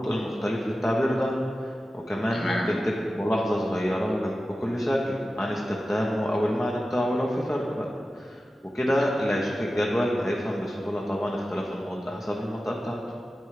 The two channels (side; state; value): both; normal; correlation 0.94